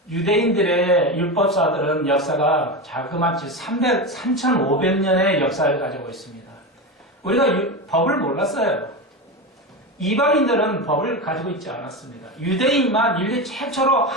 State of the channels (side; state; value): both; normal; correlation 0.20